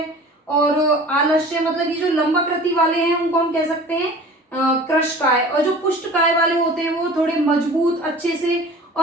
और आलस्य, मतलब ये जो लंबाकृति वाले हैं उनको हम कह सकते हैं क्रश काय, और जो पुष्ट काय वाले होते हैं वो थोड़े मजबूत अच्छे से,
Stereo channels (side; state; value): both; normal; correlation 0.42